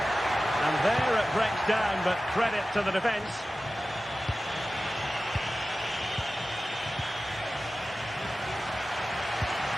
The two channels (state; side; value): normal; both; correlation 0.95